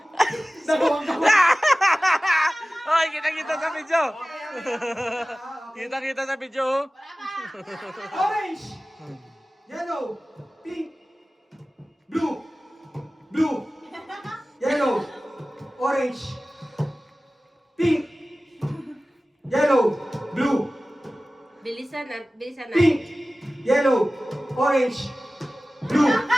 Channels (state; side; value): normal; both; correlation 0.97